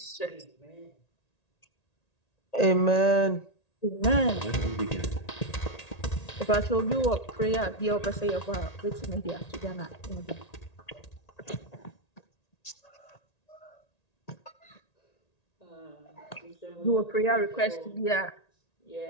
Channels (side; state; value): right; late; 1.9 ms